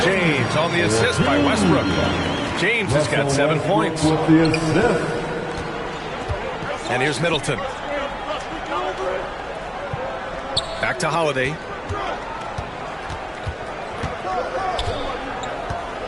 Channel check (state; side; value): identical; both; correlation 1.00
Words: James on the assist by Westbrook. James has got 7 points. With the assist. And here's Middleton. Back to Holiday.